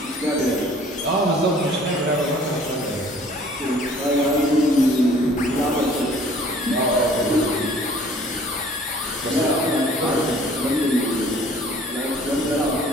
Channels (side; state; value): both; normal; correlation 0.54